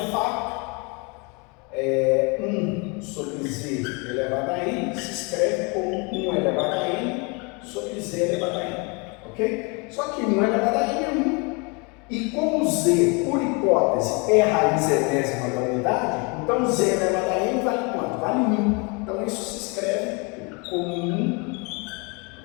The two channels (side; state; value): right; quieter; 31.0 dB